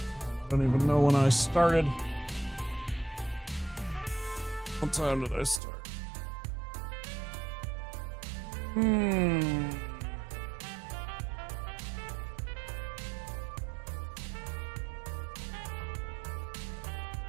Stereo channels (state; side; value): drops out; left; at 5.6 s